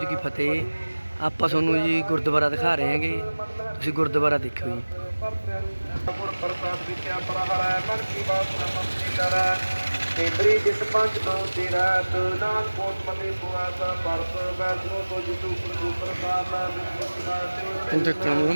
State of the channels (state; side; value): inverted; both; correlation -1.00